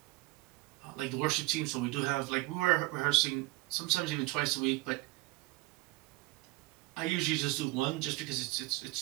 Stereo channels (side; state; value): left; quieter; 21.2 dB